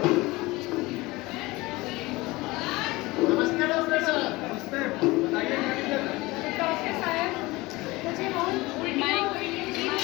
नमस्ते डॉक्टर साहब। नमस्ते, बताइए क्या दिक्कत है? डॉक्टर साहब, मुझे बहुत उल्टी हो रही है, जी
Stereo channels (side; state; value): right; quieter; 21.4 dB